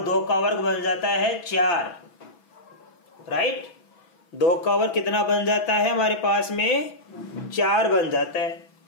2 का वर्ग बन जाता है 4। राइट, 2 का वर्ग कितना बन जाता है हमारे पास में 4 बन जाता है।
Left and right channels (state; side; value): late; right; 6.1 ms